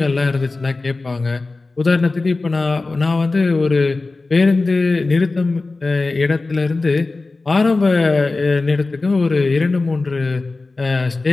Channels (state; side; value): quieter; right; 3.5 dB